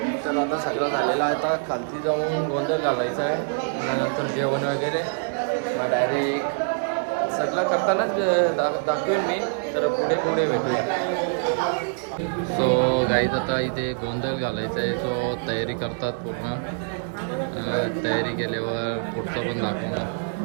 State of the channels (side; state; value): left; silent; digital silence